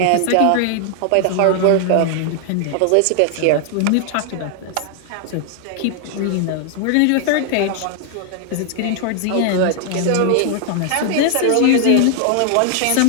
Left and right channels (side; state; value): both; different; correlation 0.00